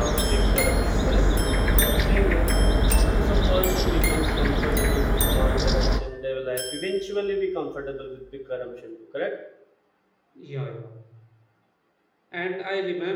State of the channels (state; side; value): identical; both; correlation 1.00